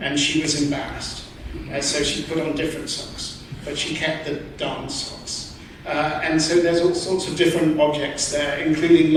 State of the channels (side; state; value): both; identical; correlation 1.00